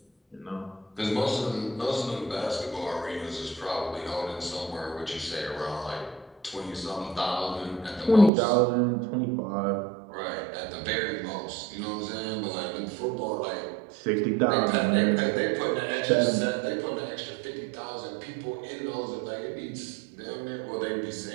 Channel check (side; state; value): left; drops out; at 8.3 s